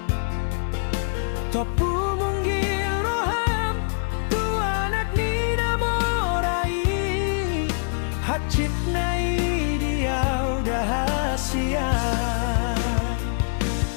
topu munggil roham tuanak ni namorai, hacit na idiau dahasia.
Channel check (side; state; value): right; silent; digital silence